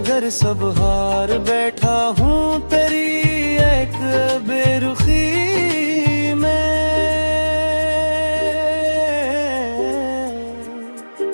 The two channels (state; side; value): inverted; both; correlation -1.00